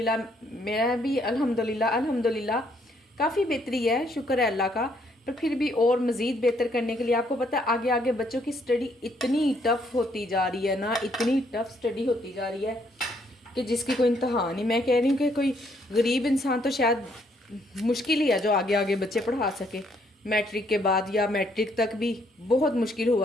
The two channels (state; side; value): normal; both; correlation 0.69